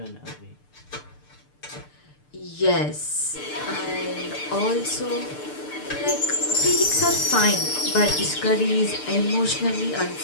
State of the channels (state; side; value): late; right; 6.7 ms